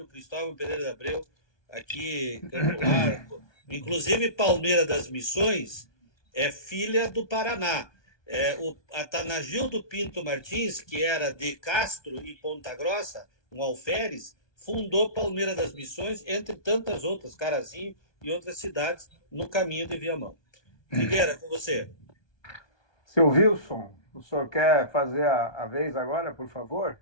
Cristóvão Pereira de Abreu, aqui em Campo Largo. Inclusive, Palmeira das Missões é filha do Paraná. O Atanagildo Pinto Martins, que era de Castro e Ponta Grossa, um alferes, fundou Palmeira das Missões, entre tantas outras, Carazinho e outras cidades, no caminho de Viamão. Figueira, com você. Seu Wilson, o senhor quer fazer a vez agora, por favor?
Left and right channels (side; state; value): right; late; 1.2 ms